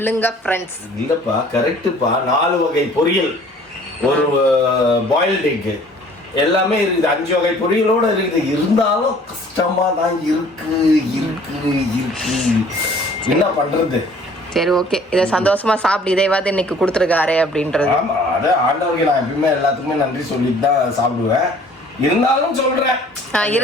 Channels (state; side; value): normal; both; correlation 0.53